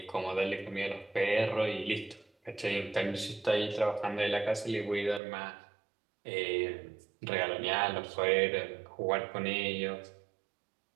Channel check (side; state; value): left; drops out; at 5.2 s